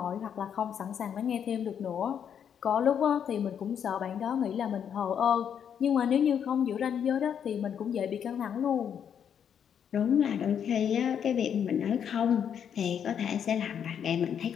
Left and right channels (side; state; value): right; quieter; 8.3 dB